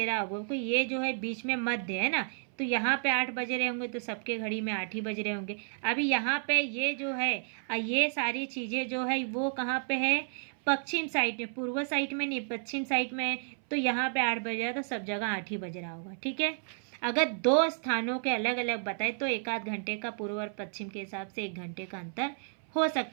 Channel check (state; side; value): silent; left; 57 dB below the other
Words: रहा होगा कि ये जो है बीच में मध्य है ना, तो यहाँ पे 8 बज रहे होंगे तो सबके घड़ी में 8 ही बज रहे होंगे। अभी यहाँ पे ये जो है ये सारी चीज़ें जो है वो कहाँ पे है, पश्चिम साइड में, पूर्व साइड में नहीं, पश्चिम साइड में। तो यहाँ पे 8 बज रहा है तो सब जगह 8 ही बज रहा होगा, ठीक है। अगर 2 स्थानों के अलग अलग बताए तो 1 घंटे का पूर्व और पश्चिम के हिसाब से 1 घंटे का अंतर हो